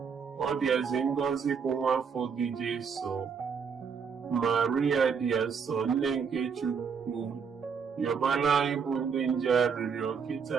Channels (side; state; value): left; quieter; 6.2 dB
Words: ọ dịazị ngọzi bụ nwa afọ gị Jesu. Maria dị asọ, nne nke Chukwu, yọbala anyị bụ ndị nje arịrịọ kịta